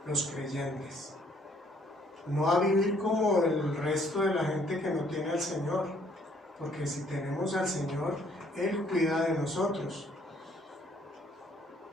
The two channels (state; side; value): normal; both; correlation 0.64